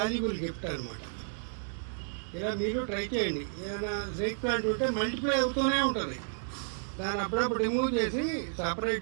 గిఫ్ట్ అనమాట. ఇలా మీరు ట్రై చేయండి. ఏదైనా స్నేక్ ప్లాంట్ ఉంటే మల్టిప్లై అవుతూనే ఉంటుంది. దాన్ని అప్పుడప్పుడు రిమూవ్ చేసి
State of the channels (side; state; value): left; silent; digital silence